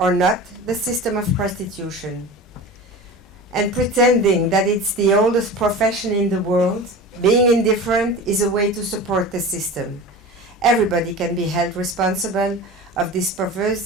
not the system of prostitution. And pretending that it's the oldest profession in the world, being indifferent is a way to support the system. Everybody can be held responsible of this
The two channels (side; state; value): both; normal; correlation 0.33